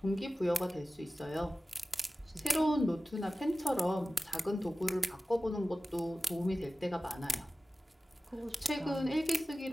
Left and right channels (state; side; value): normal; both; correlation 0.96